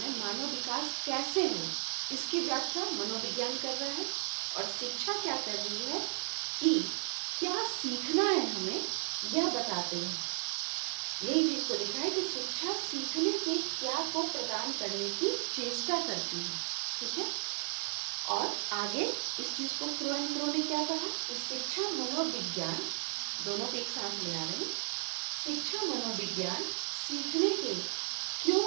मानव विकास कैसे हो, इसकी व्याख्या मनोविज्ञान कर रहा है। और शिक्षा क्या कर रही है कि क्या सीखना है हमें, यह बताते हैं। यही चीज को लिखा है कि शिक्षा सीखने के क्या को प्रदान करने की चेष्टा करती है। ठीक है। और आगे इस चीज को क्रो एंड क्रो ने क्या कहा कि शिक्षा मनोविज्ञान, दोनों को एक साथ ले आ रहे हैं, शिक्षा मनोविज्ञान सीखने के क्यों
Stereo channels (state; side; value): silent; left; digital silence